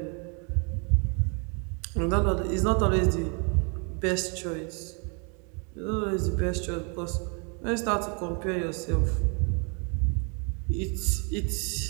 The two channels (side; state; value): left; quieter; 36.4 dB